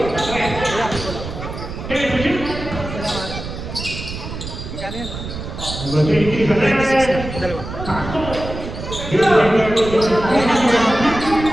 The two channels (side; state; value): right; noise; rumble, 8 dB below the sound